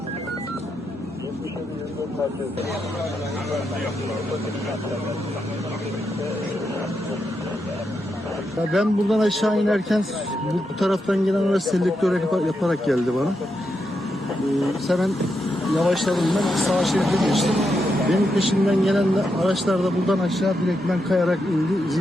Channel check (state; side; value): normal; both; correlation 0.84